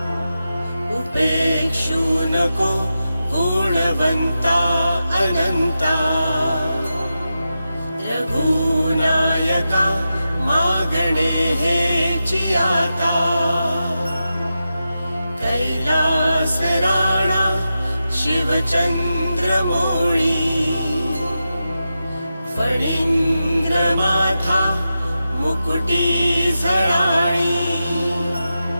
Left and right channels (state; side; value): inverted; both; correlation -0.90